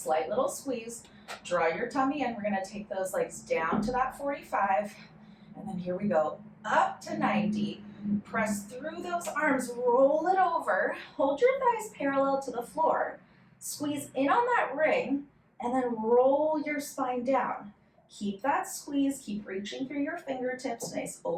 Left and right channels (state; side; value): identical; both; correlation 1.00